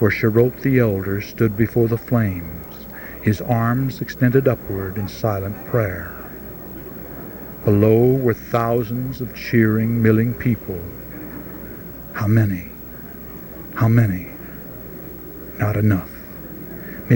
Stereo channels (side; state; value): both; identical; correlation 1.00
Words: Sharot the elder stood before the flames, his arms extended upward in silent prayer. Below were thousands of cheering, milling people. How many? How many? Not enough.